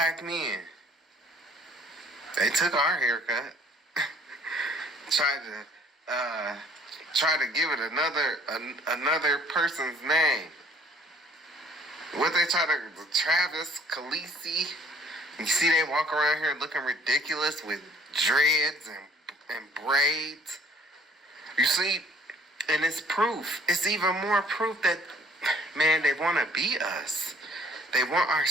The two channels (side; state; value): both; normal; correlation 0.57